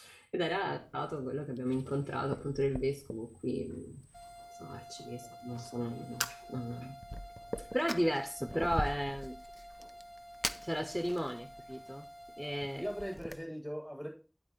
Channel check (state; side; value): identical; both; correlation 1.00